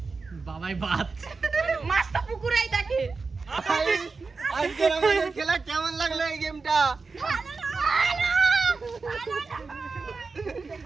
বাবাই বাদ, মাছ তো পুকুরেই থাকে। আজকের আমাদের খেলা কেমন লাগলো এই গেমটা?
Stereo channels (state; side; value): quieter; left; 4.3 dB